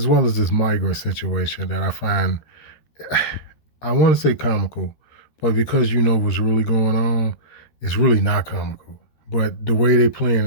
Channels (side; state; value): right; late; 13 ms